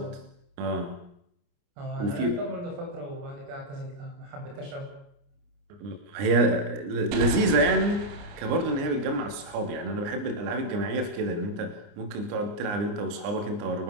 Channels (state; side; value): late; left; 29 ms